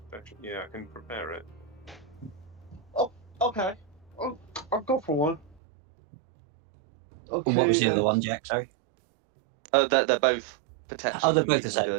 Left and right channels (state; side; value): drops out; left; at 5.6 s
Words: Yeah, I can prepare it. Oh, okay. I'll go for one. Okay. What was the other one, Jack? Sorry. They're both protection Oh, they're from both the evil and same.